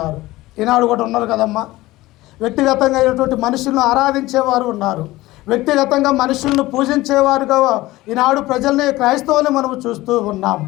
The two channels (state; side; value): quieter; right; 18.2 dB